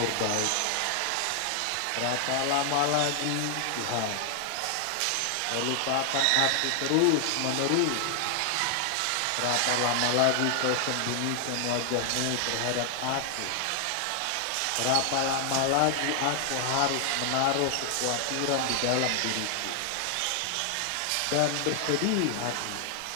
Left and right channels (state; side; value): different; both; correlation 0.00